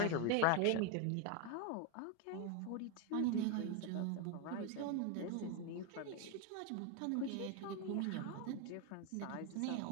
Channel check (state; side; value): different; both; correlation 0.01